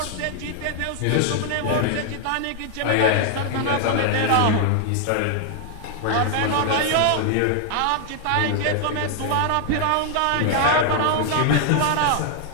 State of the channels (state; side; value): different; both; correlation 0.00